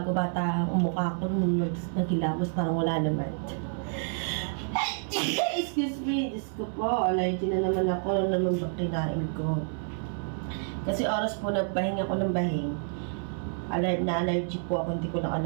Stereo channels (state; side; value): silent; left; 59 dB below the other